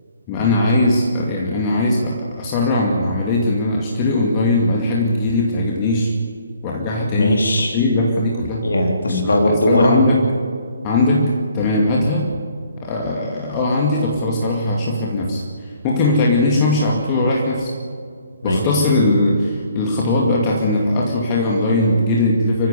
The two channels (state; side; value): inverted; both; correlation -0.60